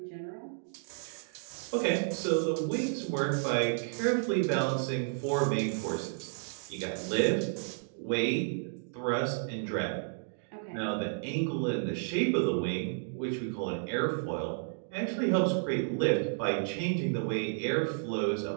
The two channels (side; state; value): left; silent; digital silence